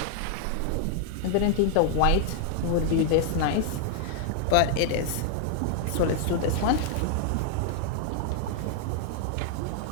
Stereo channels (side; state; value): both; different; correlation 0.00